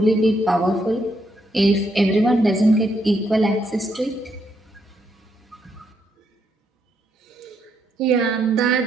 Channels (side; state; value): both; normal; correlation 0.77